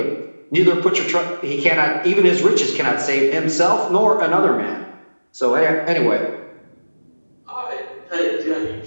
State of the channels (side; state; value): both; inverted; correlation -1.00